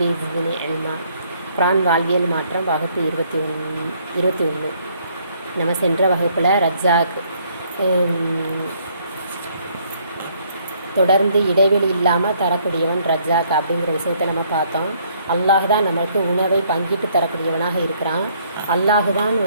ஸித்னி இல்மா. குர்ஆன் வாழ்வியல் மாற்றம் வகுப்பு 21. நம்ம சென்ற வகுப்பில் ரஜ்ஜாக் தொடர்ந்து இடைவெளி இல்லாமல் தரக்கூடியவன் ரஜ்ஜாக் அப்படிங்கிற விஷயத்தை நம்ம பார்த்தோம். அல்லாஹ் தான் நம்மளுக்கு உணவை பங்கிட்டு தரக்கூடியவனாக இருக்கிறான். அல்லாஹ் தான்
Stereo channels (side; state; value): both; inverted; correlation -0.65